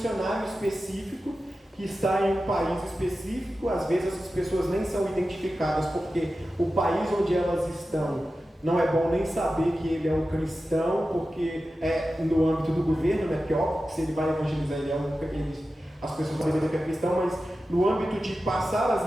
específico que está em um país específico. Às vezes as pessoas nem são identificadas porque o país onde elas estão não é bom nem saber que ele é um cristão, porque é no âmbito do governo, né? Porque óbvio que se ele vai evangelizar, as pessoas vão saber que é cristão, mas no âmbito de passar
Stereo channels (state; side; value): normal; both; correlation 0.93